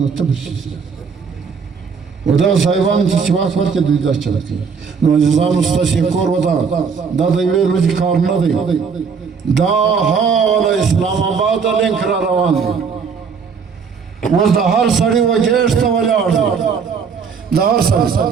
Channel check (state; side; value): quieter; left; 5.9 dB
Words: تبرشیز و دا صاحبان تی چواک ورکه دوی دا چلتی نو عزیزان استاشی کور و دا دیوی روزی کار ندی دا حال اسلام آباد لنک را روان دی وز دا هر سڑی و گیشتا ولی آرد دا هر سڑی